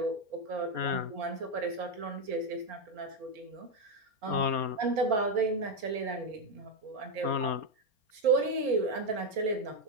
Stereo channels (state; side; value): late; left; 4.7 ms